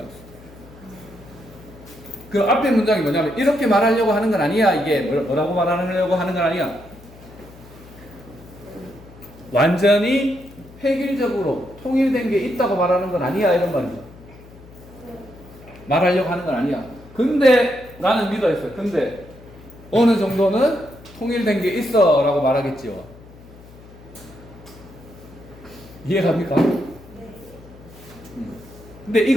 그 앞에 문장이 뭐냐면 이렇게 말하려고 하는 건 아니야. 이게 뭐라고 말하려고 하는 건 아니야. 완전히 획일적으로 통일된 게 있다고 말하는 건 아니야. 이런 말이죠. 말하려고 하는 건 아니야. 근데 나는 믿어있어. 근데 어느 정도는 통일된 게 있어 라고 말하겠지요. 이해갑니까? 근데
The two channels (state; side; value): noise; left; hum, 21 dB below the sound